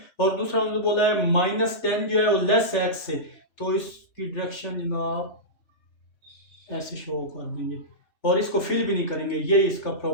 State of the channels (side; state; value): right; late; 3.2 ms